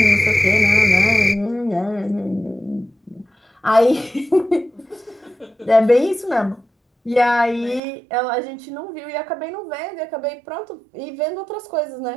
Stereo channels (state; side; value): drops out; left; at 7.8 s